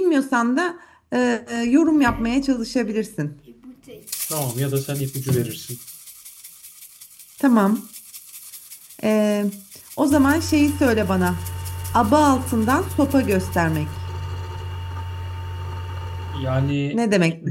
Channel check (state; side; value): identical; both; correlation 1.00